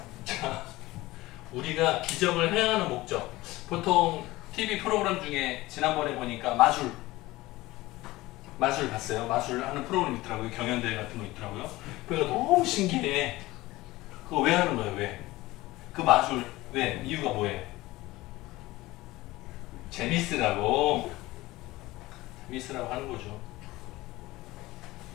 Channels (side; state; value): right; quieter; 18.9 dB